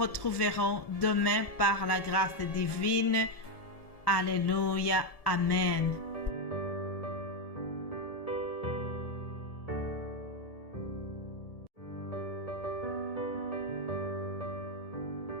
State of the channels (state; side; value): late; right; 1.7 ms